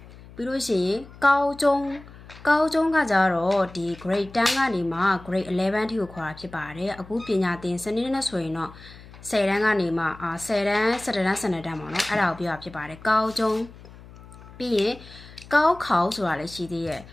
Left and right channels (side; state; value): left; noise; hum, 19 dB below the sound